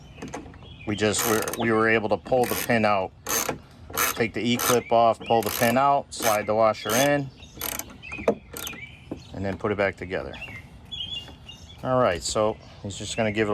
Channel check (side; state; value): both; identical; correlation 1.00